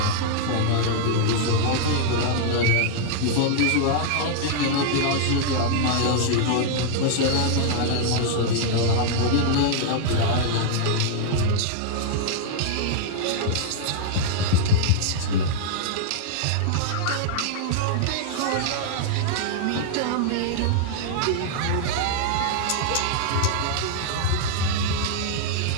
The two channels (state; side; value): different; both; correlation -0.01